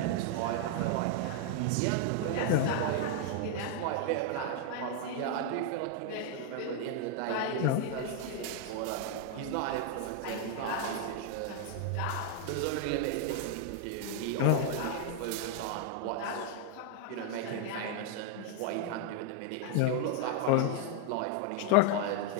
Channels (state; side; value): different; both; correlation 0.00